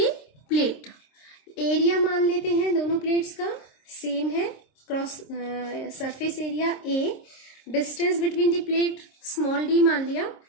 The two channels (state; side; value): late; right; 26 ms